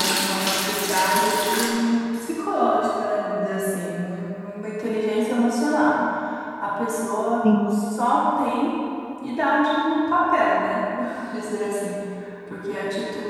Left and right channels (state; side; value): identical; both; correlation 1.00